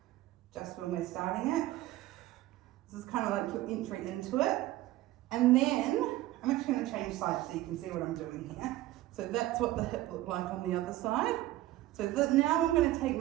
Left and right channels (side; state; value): left; quieter; 16.1 dB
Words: just when we're starting it. This is kind of like your entry into it. And then I'm actually going to change sides so you can see what I'm doing here. So that's what the hip looked like on the other side. So now I'm going to take